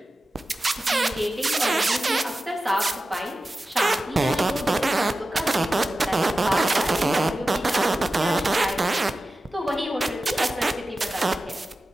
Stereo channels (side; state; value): both; normal; correlation 0.93